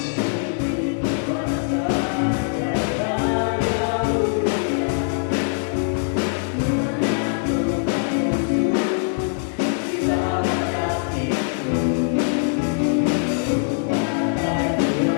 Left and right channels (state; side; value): silent; right; 64 dB below the other